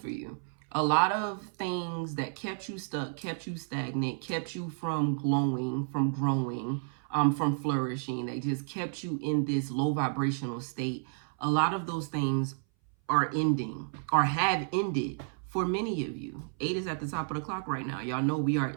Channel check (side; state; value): left; silent; 57 dB below the other